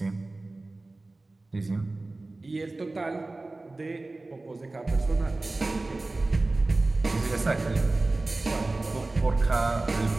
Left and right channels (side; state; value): left; quieter; 3.1 dB